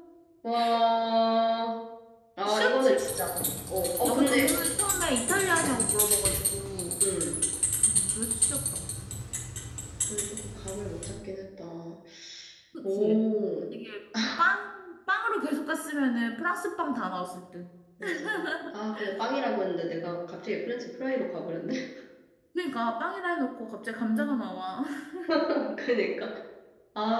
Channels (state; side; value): identical; both; correlation 1.00